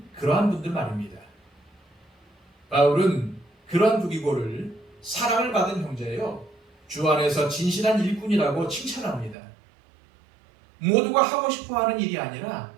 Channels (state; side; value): drops out; left; at 9.3 s